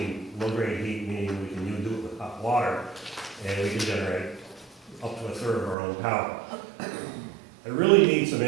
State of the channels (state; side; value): drops out; left; at 5.8 s